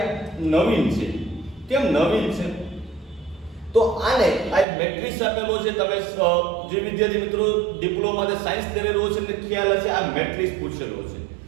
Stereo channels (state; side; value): drops out; left; at 4.7 s